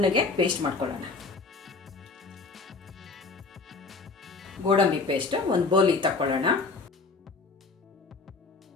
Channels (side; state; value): right; quieter; 4.1 dB